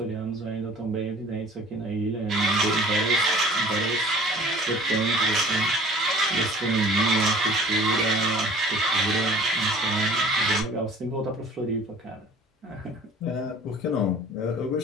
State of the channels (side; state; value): both; normal; correlation 0.48